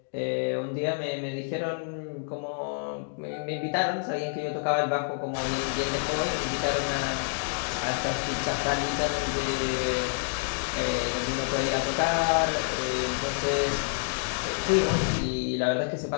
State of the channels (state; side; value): silent; right; digital silence